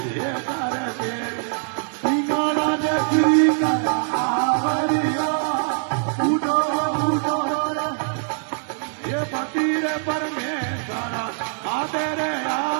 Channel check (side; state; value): left; silent; 63 dB below the other